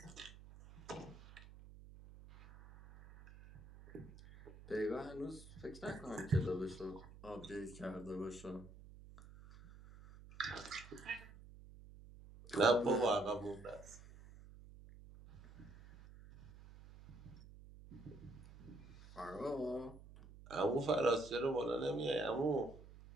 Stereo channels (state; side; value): noise; right; hum, 18 dB below the sound